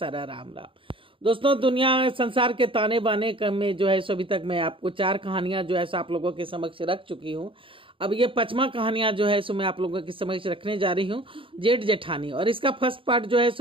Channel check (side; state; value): left; late; 0.25 ms